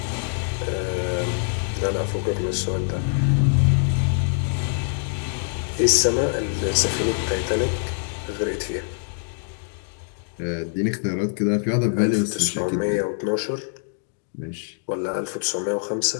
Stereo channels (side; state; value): right; silent; digital silence